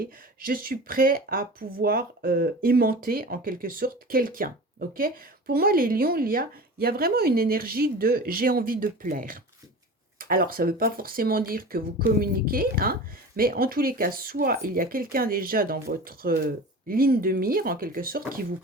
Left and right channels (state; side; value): normal; both; correlation 0.35